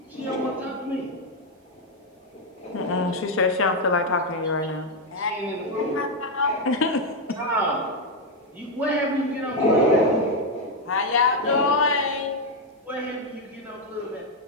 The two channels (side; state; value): both; normal; correlation 0.03